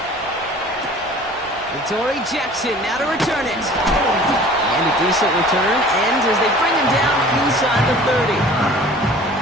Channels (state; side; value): normal; both; correlation 0.47